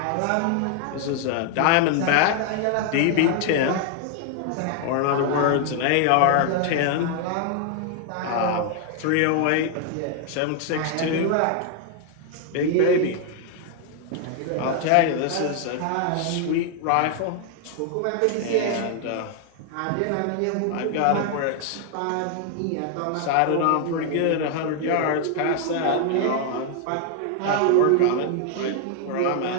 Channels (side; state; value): both; different; correlation 0.00